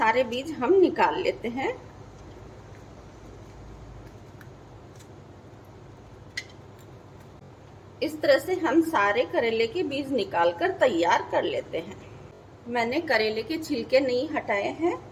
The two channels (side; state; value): both; identical; correlation 1.00